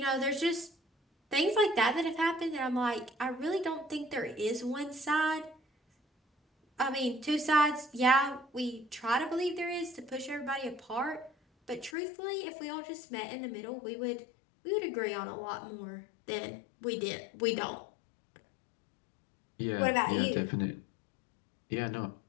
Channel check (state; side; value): drops out; right; at 12.0 s